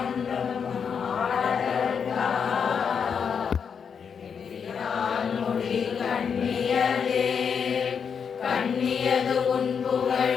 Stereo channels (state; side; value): quieter; right; 6.7 dB